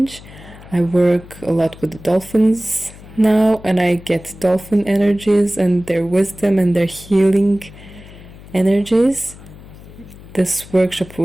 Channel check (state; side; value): noise; left; hum, 19 dB below the sound